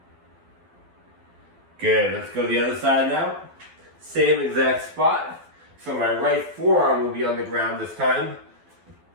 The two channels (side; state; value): left; late; 12 ms